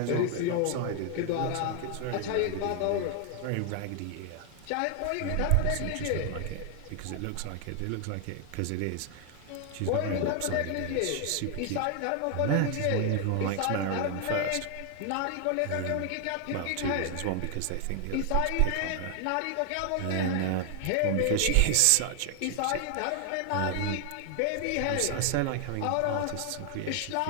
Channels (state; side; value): different; both; correlation 0.00